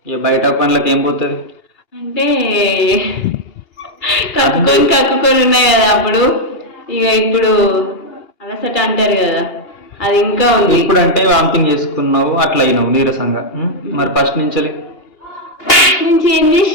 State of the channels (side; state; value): right; late; 2.8 ms